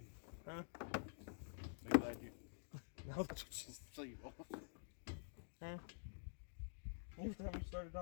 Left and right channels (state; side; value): silent; right; digital silence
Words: Huh? Be glad you No, just. see you, boy. Huh? Every time you started